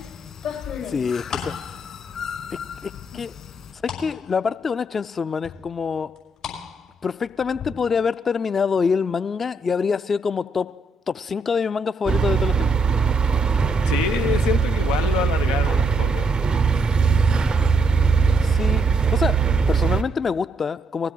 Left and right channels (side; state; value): both; normal; correlation 0.76